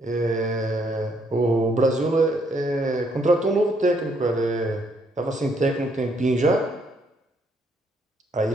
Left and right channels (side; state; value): both; normal; correlation 0.71